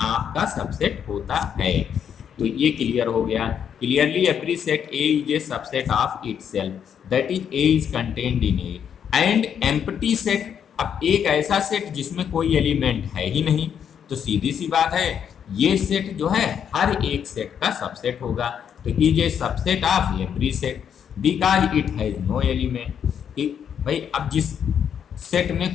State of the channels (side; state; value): right; quieter; 8.3 dB